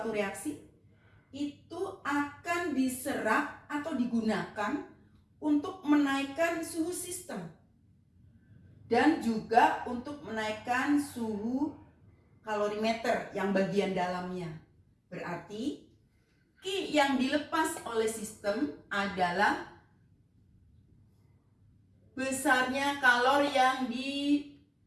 reaksi itu akan diserap atau digunakan untuk menaikkan suhu sistem dan juga untuk menaikkan suhu kalorimeter yang bagian dalamnya. Berarti Q yang dilepas oleh sistem adalah besarnya kalor yang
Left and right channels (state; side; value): identical; both; correlation 1.00